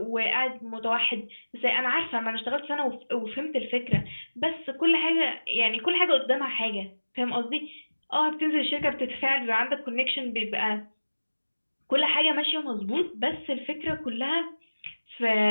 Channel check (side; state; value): both; inverted; correlation -1.00